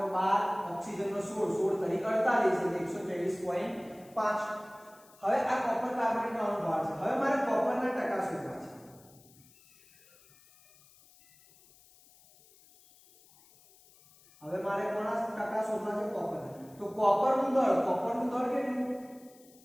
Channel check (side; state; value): left; noise; hiss, 27 dB below the sound